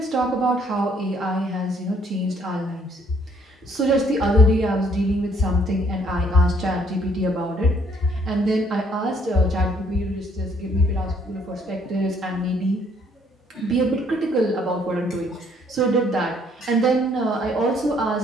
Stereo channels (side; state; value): both; normal; correlation 0.65